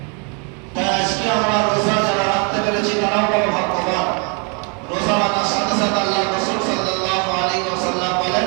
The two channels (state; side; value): quieter; left; 36.0 dB